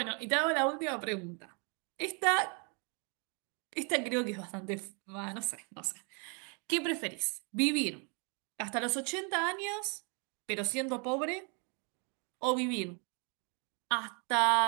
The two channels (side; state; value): left; quieter; 35.9 dB